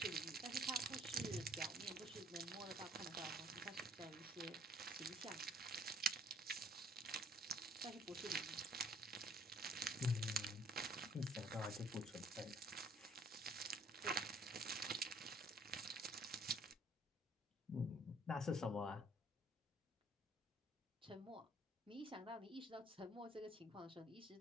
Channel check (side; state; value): both; normal; correlation 0.59